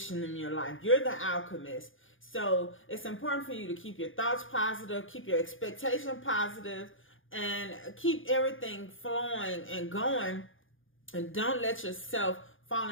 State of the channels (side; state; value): right; late; 0.58 ms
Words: in your life. You're the alchemist. So it's important for you to keep your thoughts positive, keep your expectation positive, and keep everything flowing and going. And don't let yourself